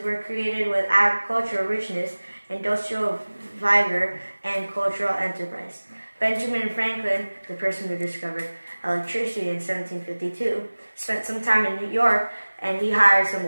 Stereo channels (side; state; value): both; inverted; correlation -1.00